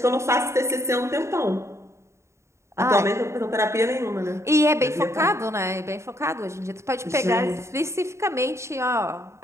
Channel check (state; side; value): late; left; 0.14 ms